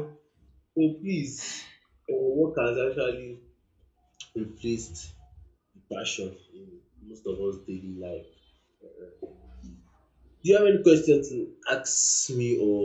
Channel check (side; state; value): both; identical; correlation 1.00